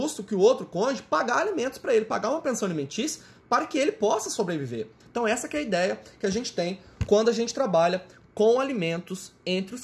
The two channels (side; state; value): both; identical; correlation 1.00